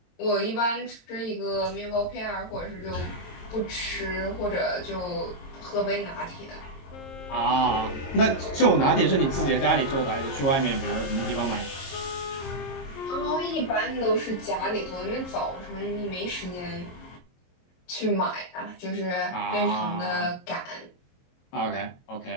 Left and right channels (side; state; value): right; late; 22 ms